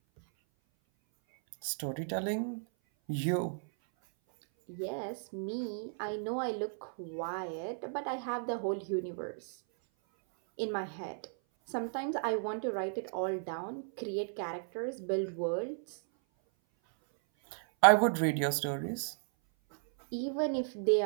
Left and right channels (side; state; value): left; silent; 55 dB below the other